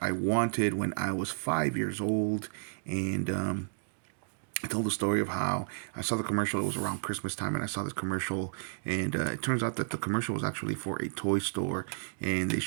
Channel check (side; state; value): left; silent; digital silence